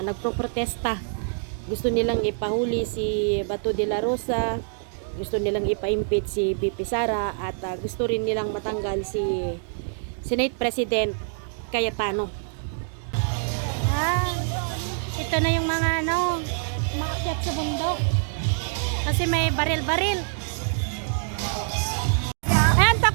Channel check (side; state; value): left; silent; digital silence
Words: nagproprotesta. Gusto nilang ipahuli si Bato de la Rosa, gusto nilang ipa-impeach si BP Sara, at gusto rin nilang matanggal si Senate President Cayetano. Ito na yung mga maakyat sa bundok. Kasi may baril-baril. Ayan,